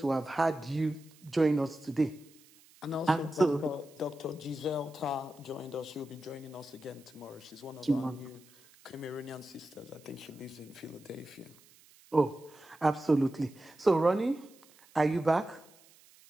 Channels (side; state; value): right; noise; hiss, 26 dB below the sound